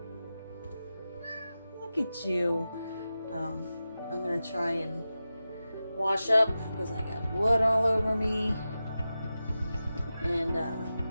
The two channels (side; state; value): both; inverted; correlation -0.93